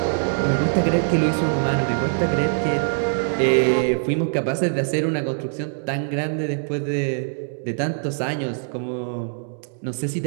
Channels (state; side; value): silent; left; digital silence